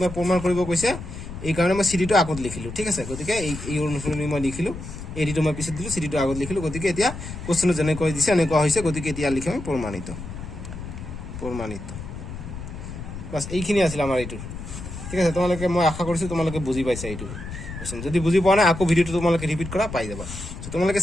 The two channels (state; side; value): noise; left; rumble, 10 dB below the sound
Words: মই প্ৰমাণ কৰিব কৈছে, এইকাৰণে মই CDটো আগত লিখিলোঁ। ঠিক আছে, গতিকে এই অনুসৰি মই লিখিলোঁ, ADটো মই পিছত দিলোঁ, CDটো আগত লিখিলোঁ। গতিকে এতিয়া কুৱেশ্যনত যেনেকৈ দিছে এনেকুৱা হৈছে, গতিকে এতিয়া লিখিম প্ৰমাণিত। বাছ এইখিনি আছিল আমাৰ এইটোৰ। ঠিক আছে, তোমালোকে মই আশা কৰিছোঁ তোমালোকে বুজি পাইছা এইটো কুৱেশ্যন। যদি বুজি পোৱা নাই, আকৌ ভিডিঅ'টো তোমালোকে ৰিপিট কৰা, পাই যাবা। তোমালোকে